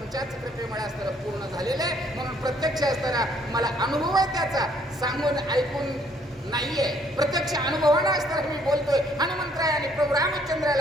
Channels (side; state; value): both; normal; correlation 0.64